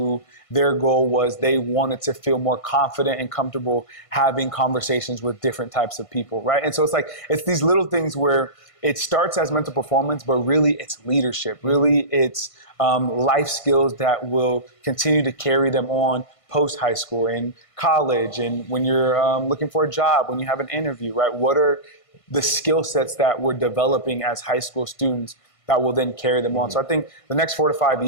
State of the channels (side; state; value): right; late; 1.5 ms